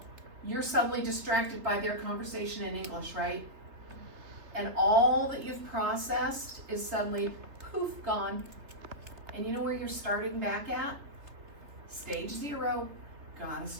You're suddenly distracted by their conversation in English, right? And all that you've processed is suddenly, poof, gone. And you know where you're starting back at? Stage 0. Gotta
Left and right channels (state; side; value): late; left; 3.3 ms